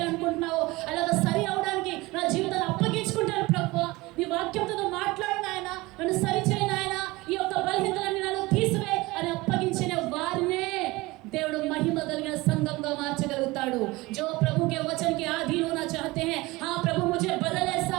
అలాగ సరి అవడానికి నా జీవితాన్ని అప్పగించుకుంటాను. ప్రభు నీ వాక్యంతో మాట్లాడు నాయన, నన్ను సరి చేయి నాయన, ఈ యొక్క బలహీనతలన్నీ నన్ను తీసివే అని అప్పగించిన వారినే దేవుడు మహిమ కలిగిన సంఘంగా మార్చగలుగుతాడు. जो प्रभु के वचन के अधीन होना चाहते हैं, हाँ प्रभु मुझे बदल, ऐसा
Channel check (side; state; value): left; quieter; 21.4 dB